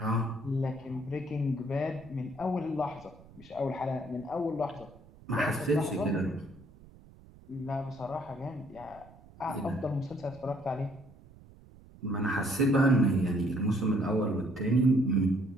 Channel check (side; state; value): right; noise; rumble, 22 dB below the sound